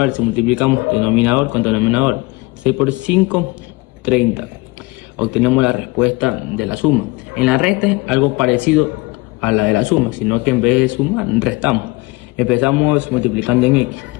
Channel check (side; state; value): right; quieter; 24.0 dB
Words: se multiplicamos denominador con denominador. 6 por 5, 30. Obtenemos la respuesta de la suma. En la resta es algo parecido a la de la suma, sino que en vez de sumar, restamos. Empezamos multiplicando en x.